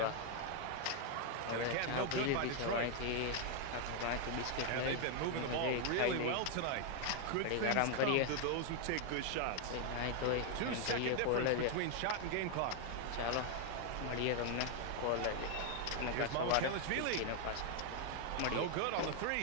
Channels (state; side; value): different; both; correlation 0.00